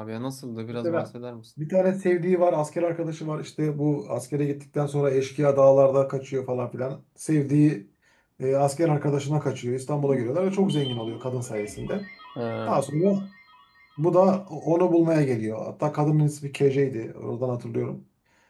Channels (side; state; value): both; identical; correlation 1.00